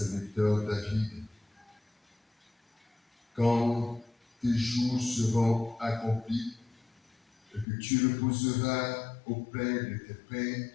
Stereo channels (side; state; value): right; drops out; at 7.7 s